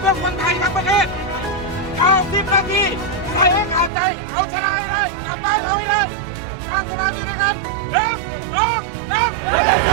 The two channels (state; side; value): drops out; left; at 3.9 s